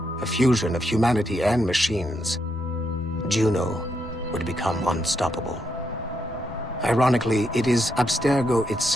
a fusion of humanity and machines, Juno would become unstoppable. Ironically, it is Abstergo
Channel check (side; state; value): both; normal; correlation 0.79